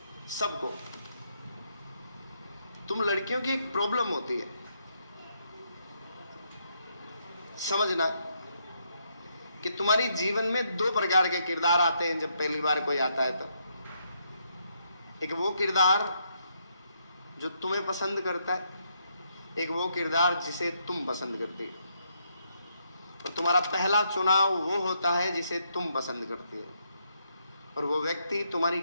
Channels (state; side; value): inverted; both; correlation -0.76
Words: सबको। तुम लड़कियों की एक प्रॉब्लम होती है, समझना कि तुम्हारी जीवन में दो प्रकार के किरदार आते हैं जब पहली बार कोई आता है तो। एक वो किरदार जो तुम्हें पसंद करता है, एक वो किरदार जिसे तुम पसंद करती हो। और तुम्हारा पहला चुनाव वो होता है जिसे तुम पसंद करती हो, और वो व्यक्ति तुम्हारी